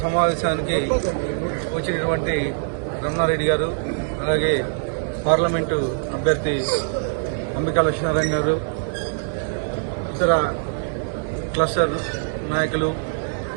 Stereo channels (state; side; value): silent; left; digital silence